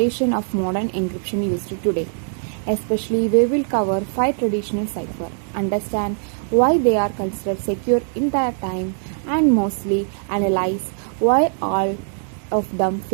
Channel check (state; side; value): silent; left; 65 dB below the other